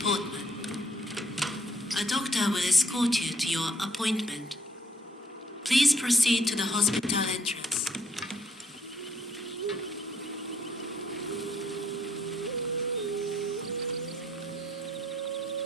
Portman. A doctor will escort you to your appointment. Please proceed to the hospital entrance.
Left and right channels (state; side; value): normal; both; correlation 0.69